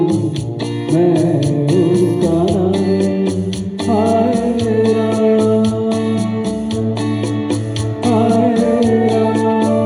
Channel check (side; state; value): both; identical; correlation 1.00